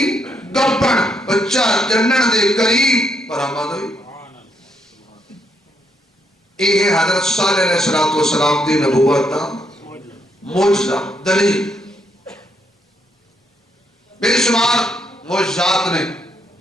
گپن بچہ جنن دے قریب برآمد ہوئی. یہ حضرت صالح علیہ السلام دی نبوت دا معجزہ دلیل. بے شمار معجزات نے،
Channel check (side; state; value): both; normal; correlation 0.75